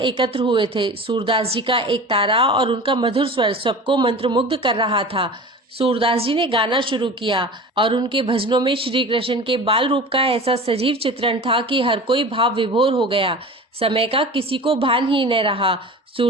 हुए थे। सूरदास जी का एक तारा और उनका मधुर स्वर सबको मंत्रमुग्ध कर रहा था। सूरदास जी ने गाना शुरू किया और उनके भजनों में श्री कृष्ण के बाल रूप का ऐसा सजीव चित्रण था कि हर कोई भाव विभोर हो गया। समय का किसी को भान ही न रहा।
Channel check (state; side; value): normal; both; correlation 0.36